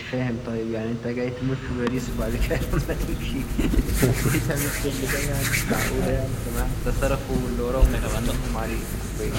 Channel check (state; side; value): identical; both; correlation 1.00